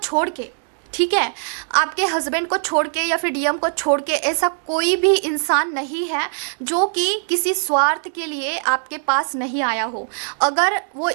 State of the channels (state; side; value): silent; left; digital silence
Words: के, ठीक है, आपके हस्बैंड को छोड़ के या फिर डीएम को छोड़ के ऐसा कोई भी इंसान नहीं है जो कि किसी स्वार्थ के लिए आपके पास नहीं आया हो। अगर वो